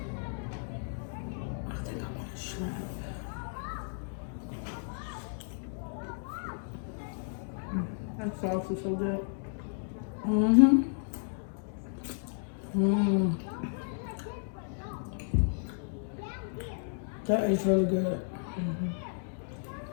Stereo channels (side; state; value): right; silent; digital silence